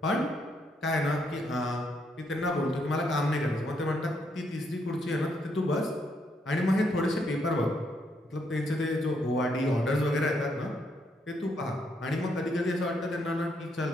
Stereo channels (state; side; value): normal; both; correlation 0.75